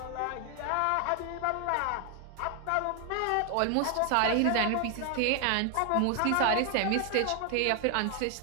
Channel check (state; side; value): different; both; correlation 0.00